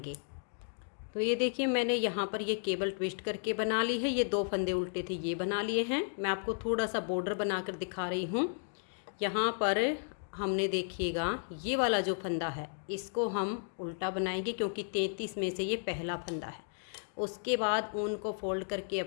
तो ये देखिए मैंने यहाँ पर ये केबल ट्विस्ट करके बना ली है। ये 2 फंदे उल्टे थे ये बना लिए हैं। मैं आपको थोड़ा सा बॉर्डर बनाकर दिखा रही हूँ। यहाँ पर हमने देखिएगा ये वाला जो फंदा है इसको हम उल्टा बनाएंगे क्योंकि 33 में से ये पहला फंदा है। उसके बाद ऊन को फोल्ड करके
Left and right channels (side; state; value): right; silent; digital silence